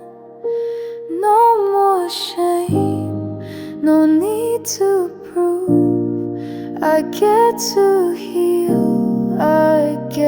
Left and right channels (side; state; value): both; identical; correlation 1.00